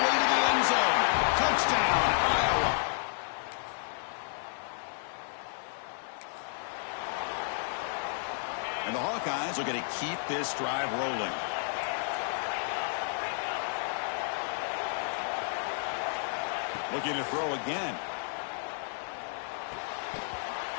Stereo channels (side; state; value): right; silent; 57 dB below the other